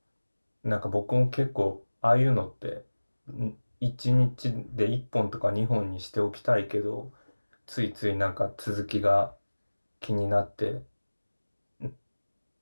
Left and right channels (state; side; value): inverted; both; correlation -1.00